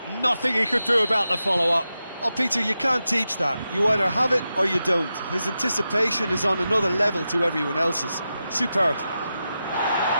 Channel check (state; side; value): inverted; both; correlation -0.90